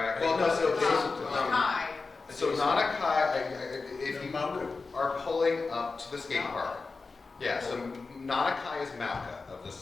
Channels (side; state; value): right; quieter; 4.1 dB